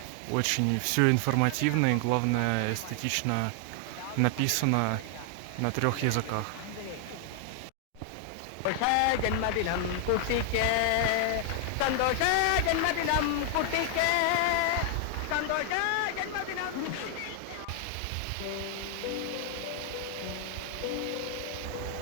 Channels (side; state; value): both; different; correlation 0.00